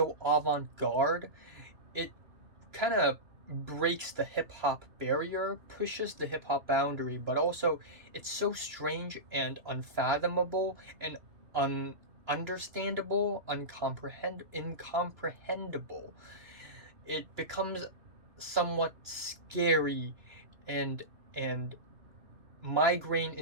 avant-garde. It kind of breaks the hip hop barrier, pushes the hip hop boundary, but also it's so strange and unfathomable and understandable, incomprehensible. It becomes somewhat scary and and migraine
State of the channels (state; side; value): late; left; 2.9 ms